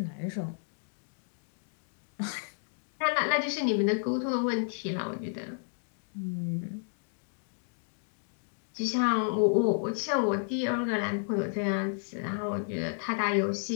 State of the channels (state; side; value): silent; right; digital silence